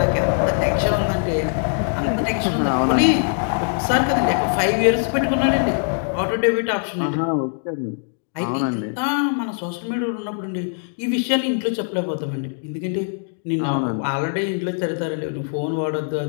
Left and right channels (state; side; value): silent; right; 64 dB below the other